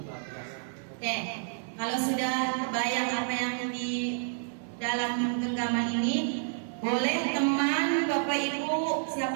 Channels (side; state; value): left; silent; 57 dB below the other